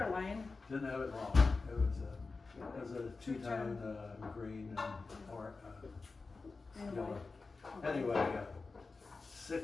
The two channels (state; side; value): quieter; right; 4.0 dB